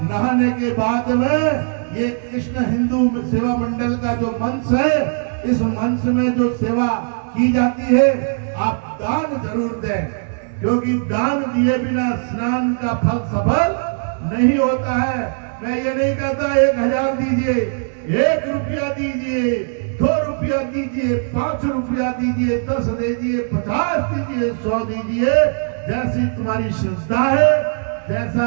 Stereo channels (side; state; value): left; silent; 66 dB below the other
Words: नहाने के बाद में। ये कृष्ण हिंदू सेवा मंडल का जो मंच है, इस मंच में जो सेवा की जाती है, आप दान जरूर दें, क्योंकि दान दिए बिना स्नान का फल सफल नहीं होता है। मैं ये नहीं कहता 1000 दीजिए, 1 रुपया दीजिए, 2 रुपया दीजिए, 5 रुपया दीजिए, 10 दीजिए, 50 दीजिए, 100 दीजिए, जैसी तुम्हारी श्रद्धा है,